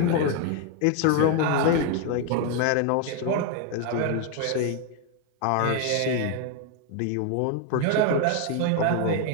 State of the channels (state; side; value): different; both; correlation 0.01